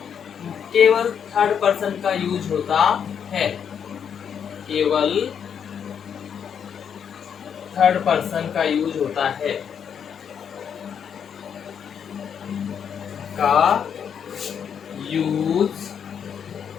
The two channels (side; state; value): right; quieter; 7.8 dB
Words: केवल थर्ड पर्सन का यूज होता है। केवल थर्ड पर्सन का यूज होता है, का यूज